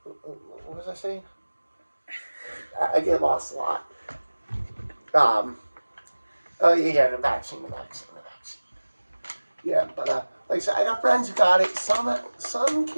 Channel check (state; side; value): inverted; both; correlation -1.00